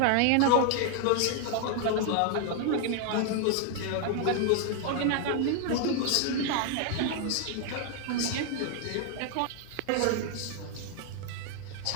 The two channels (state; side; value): different; both; correlation 0.00